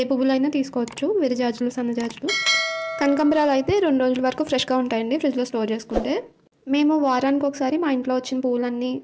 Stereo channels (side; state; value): both; identical; correlation 1.00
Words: ఏ పువ్వులైనా తీసుకోవచ్చు, విరజాజులు, సన్నజాజులు. కనకాంబరాలు అయితే 2 రోజుల వరకు ఫ్రెష్గా ఉంటాయండి ఫ్రిడ్జ్లో స్టోర్ చేసుకుంటే. మేము వారానికి ఒకసారి మా ఇంట్లో వచ్చిన పువ్వులన్నీ,